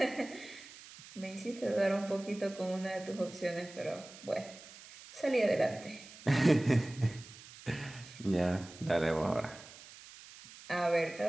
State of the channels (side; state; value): right; noise; hiss, 18 dB below the sound